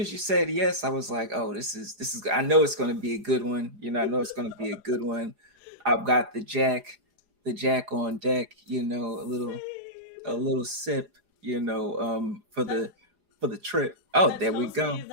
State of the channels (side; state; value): left; late; 4.9 ms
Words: you said yes, I was like, oh, this is. I know it's going to be a good one. I know it's going to be a good one. I've got the Jack on deck. A Same. little sip. For That the trip. Oh, that there we tells me go.